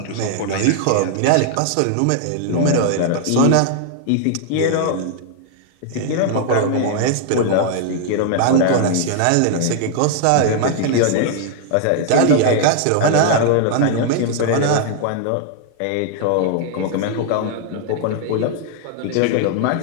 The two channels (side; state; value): both; different; correlation 0.00